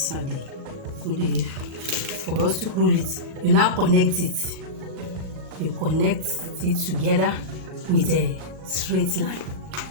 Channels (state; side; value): late; left; 38 ms